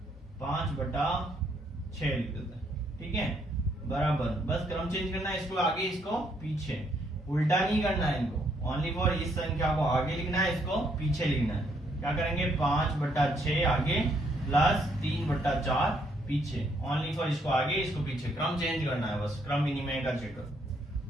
5 बटा 6 लिख देते हैं, ठीक है, बराबर। बस क्रम चेंज करना है, इसको आगे इसको पीछे, उल्टा नहीं करना है इनको। ओनली फॉर इस संख्या को आगे लिखना है, इसको पीछे लिखना है। क्या करेंगे, 5 बटा 6 आगे प्लस 3 बटा 4 पीछे। ओनली फॉर इसको आगे इसको पीछे, क्रम चेंज करना है, बस क्रम विनिमय का चक्कर।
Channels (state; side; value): normal; both; correlation 0.71